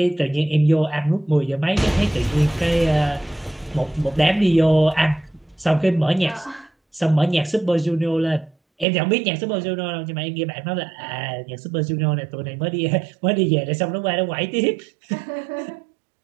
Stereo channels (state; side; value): drops out; left; at 8.8 s